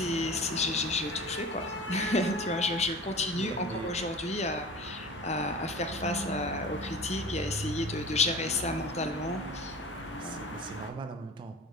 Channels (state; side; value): normal; both; correlation 0.37